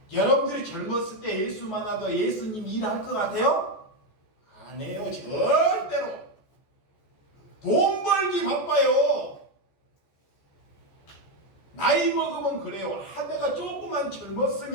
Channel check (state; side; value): late; right; 14 ms